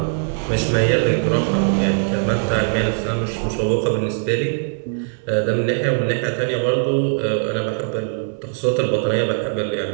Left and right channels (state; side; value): silent; left; 65 dB below the other